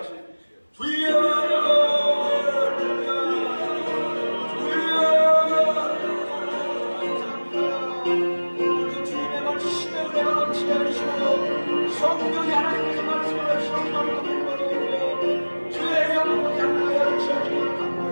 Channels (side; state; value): both; inverted; correlation -1.00